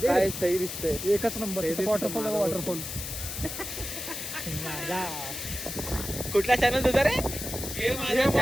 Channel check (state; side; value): noise; left; hiss, 6 dB below the sound